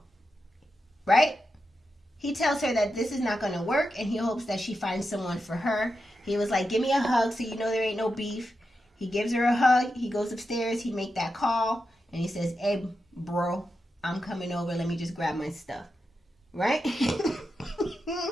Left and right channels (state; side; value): normal; both; correlation 0.88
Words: Right? He tells her that this is not going to work, and he hopes that she finds someone for her. He was like, give me a hug so you know there ain't no beef. He gives her a hug. He goes upstairs. He make that call, and he says, hey, bro, I'm coming over. Let me just grab my stuff. Right?